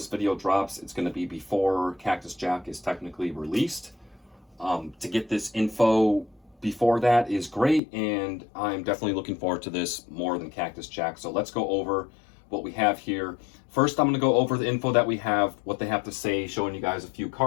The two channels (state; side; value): drops out; right; at 7.8 s